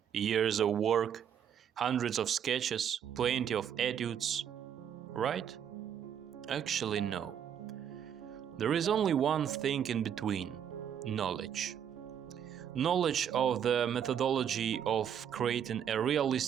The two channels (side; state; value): left; quieter; 8.8 dB